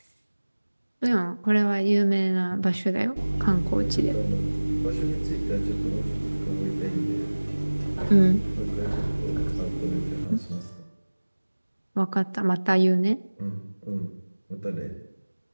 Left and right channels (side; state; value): both; inverted; correlation -1.00